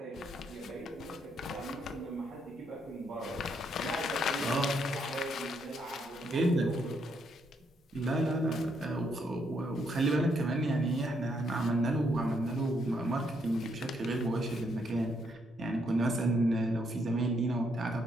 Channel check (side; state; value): both; normal; correlation 0.74